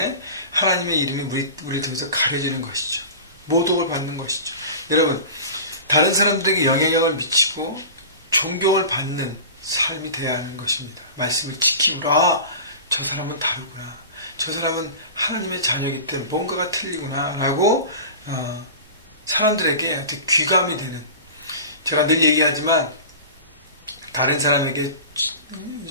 하나님의 이름이 우리를 통해서 가려지는 것이죠. 모독을 받는 것이죠. 여러분 다른 사람들에게 영향력을 미치고 존경을 받는 삶이 되어야 하는 것입니다. 말씀을 지킴으로 저 사람은 다르구나. 저 사람은 하나님의 자녀이기 때문에 뭔가가 틀리구나 라고 사람들에게 어떻게 귀감이 되는 제가 늘 얘기하지만 다른 사람에게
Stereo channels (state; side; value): inverted; both; correlation -0.35